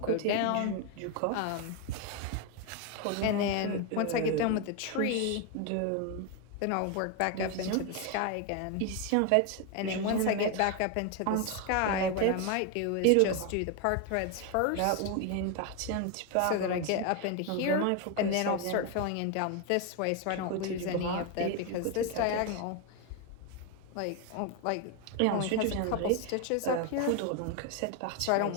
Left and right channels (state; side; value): different; both; correlation 0.01